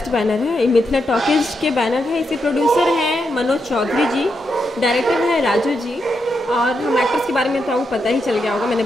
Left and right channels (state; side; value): normal; both; correlation 0.83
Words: बैनर है, ये मिथिला टॉकीज के बैनर है। इसके प्रोड्यूसर हैं मनोज चौधरी जी, डायरेक्टर है राजू जी। और हम एक्टर्स के बारे में तो आपको पता ही चल गया होगा, मैंने